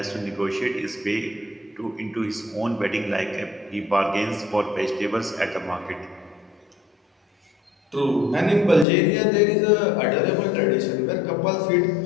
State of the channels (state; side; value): drops out; right; at 8.8 s